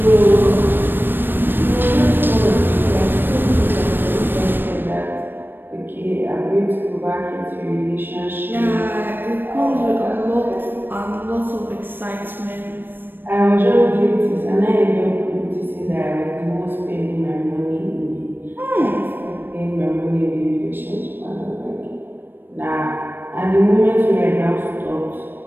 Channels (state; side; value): late; left; 0.095 ms